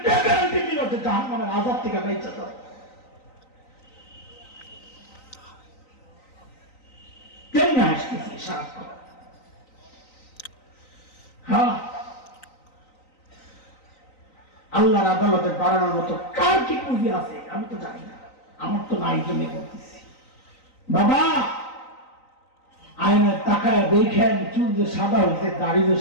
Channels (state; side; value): late; right; 3.9 ms